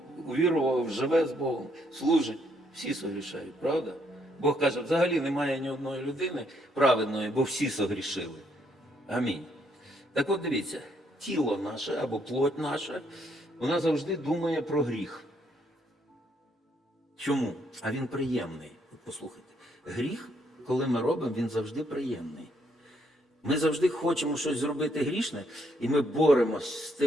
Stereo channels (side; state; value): both; normal; correlation 0.72